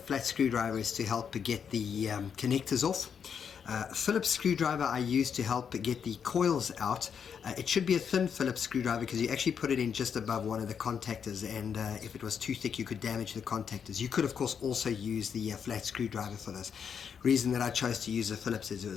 screwdriver is to help get the connectors off. Phillips screwdriver I use to help get the coils out. It should be a thin Phillips screwdriver because you actually put it in just above one of the contactors, and if it was too thick you could damage the contactors. You could of course also use the flat screwdriver for this. Reason that I chose to use the Phillips is it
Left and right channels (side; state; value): right; quieter; 7.2 dB